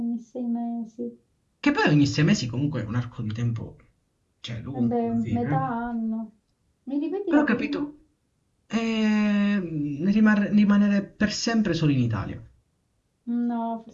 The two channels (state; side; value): identical; both; correlation 1.00